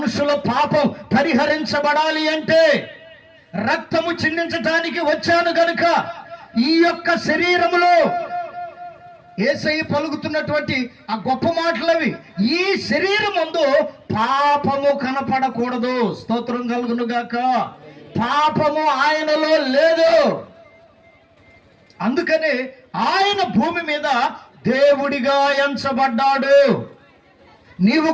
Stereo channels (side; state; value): both; identical; correlation 1.00